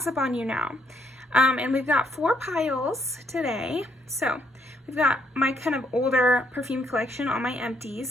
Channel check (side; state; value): both; normal; correlation 0.72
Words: on you now. And we've got 4 piles today. So we've got my kind of older perfume collection, all my